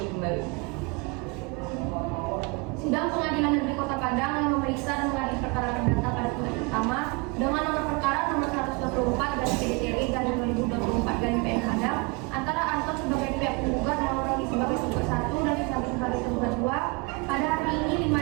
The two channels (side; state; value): left; quieter; 28.1 dB